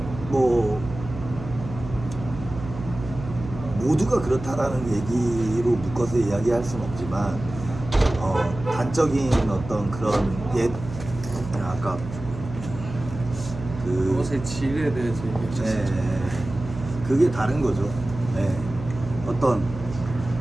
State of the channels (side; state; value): right; noise; hum, 11 dB below the sound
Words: 뭐 모두가 그렇다라는 얘기로 묶어서 이야기할 수는 없지만 단적인 어떤 그런 아까 옷의 질에 대해서 얘기하셨죠. 그게 다른 거죠. 네.